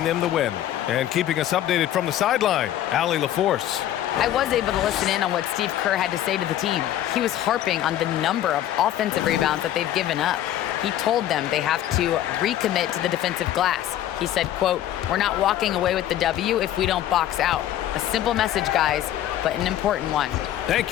them the win. And keeping us updated from the sideline, Allie LaForce. I was able to listen in on what Steve Kerr had to say to the team. He was harping on the number of offensive rebounds that they've given up. He told them they have to recommit to the defensive glass. He said, quote, "We're not walking away with the W if we don't box out." A simple message, guys, but an important one. Thank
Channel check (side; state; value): right; quieter; 12.3 dB